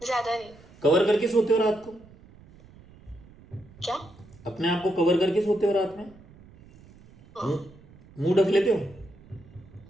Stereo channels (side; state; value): right; noise; rumble, 23 dB below the sound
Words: ज्यादा नहीं। कवर करके सोते हो रात को? क्या? अपने आप को कवर करके सोते हो रात में? मुंह ढक लेते हो?